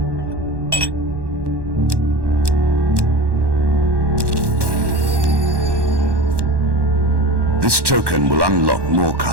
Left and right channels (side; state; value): left; late; 1.1 ms